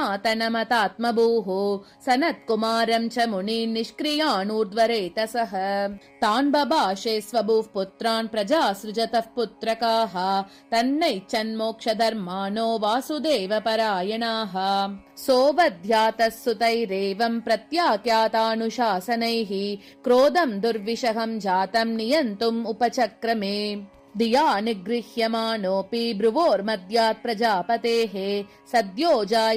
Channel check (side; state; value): both; identical; correlation 1.00